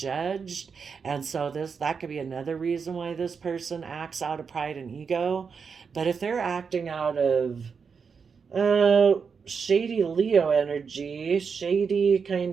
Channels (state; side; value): quieter; left; 5.8 dB